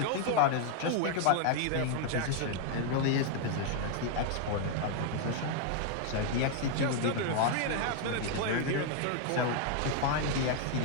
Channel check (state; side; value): different; both; correlation 0.00